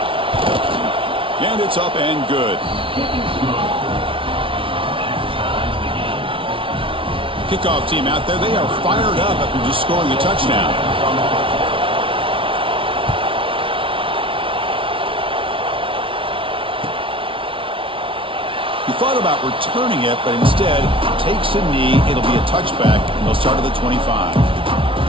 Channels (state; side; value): late; left; 0.25 ms